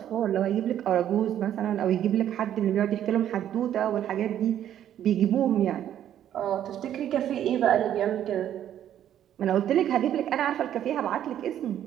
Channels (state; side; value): quieter; left; 10.8 dB